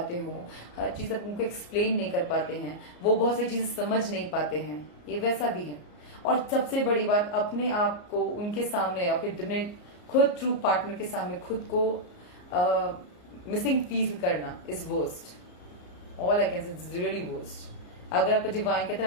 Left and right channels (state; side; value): late; right; 34 ms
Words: हो, हर चीज आप उनको एक्सप्लेन नहीं कर पाते हैं, वो बहुत सारी चीजें समझ नहीं पाते हैं, ये वैसा भी है। और सबसे बड़ी बात, अपने आप को उनके सामने, अपने खुद ट्रू पार्टनर के सामने खुद को मिसिंग फील करना is worst. All I can say is really worst. अगर आपका डिवाइन कहते